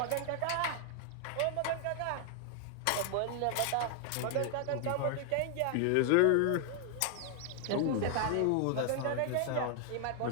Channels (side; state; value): both; different; correlation 0.00